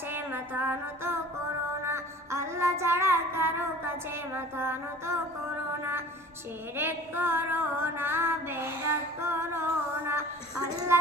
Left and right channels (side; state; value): both; normal; correlation 0.44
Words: মাথা নত করো না। আল্লাহ ছাড়া কারো কাছে মাথা নত করো না। শিরক করো না, বেদাত করো না,